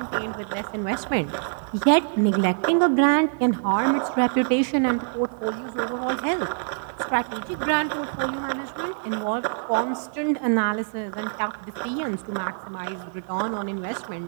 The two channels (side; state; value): left; silent; digital silence